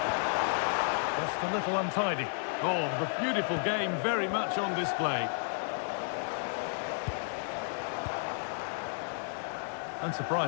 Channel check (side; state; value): right; silent; digital silence